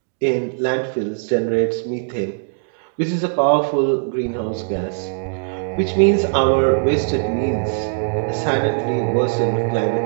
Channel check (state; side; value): silent; left; digital silence